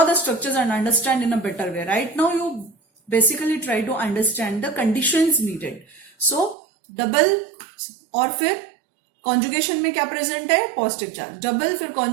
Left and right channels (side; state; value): left; drops out; at 6.6 s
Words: the structures and understand in a better way. Right now you basically try to understand the conditions needed. So double और फिर conjugation में क्या प्रेजेंट है? Positive charge. डबल फिर